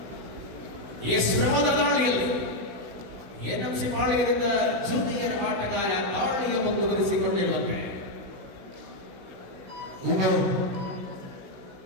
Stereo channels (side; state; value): left; late; 16 ms